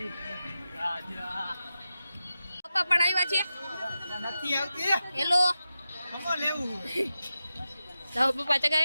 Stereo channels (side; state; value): both; inverted; correlation -0.91